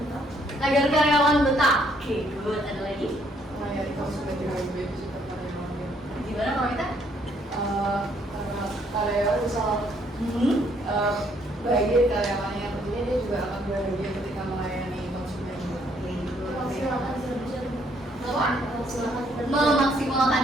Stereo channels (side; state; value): both; normal; correlation 0.68